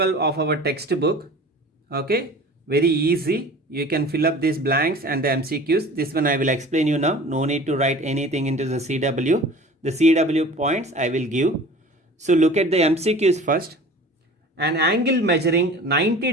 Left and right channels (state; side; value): normal; both; correlation 0.42